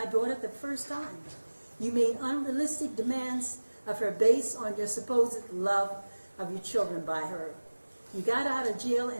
daughter the first time. You made unrealistic demands of her based on your supposed love of your children by her. You got out of jail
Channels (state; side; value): inverted; both; correlation -1.00